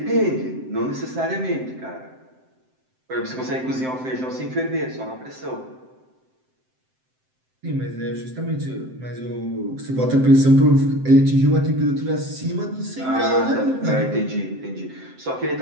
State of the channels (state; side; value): late; left; 7.7 ms